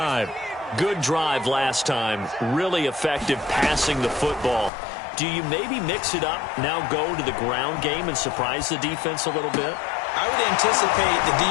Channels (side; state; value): right; drops out; at 4.7 s